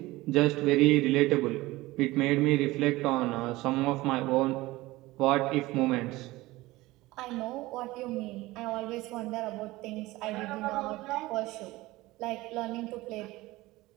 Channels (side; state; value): left; quieter; 19.2 dB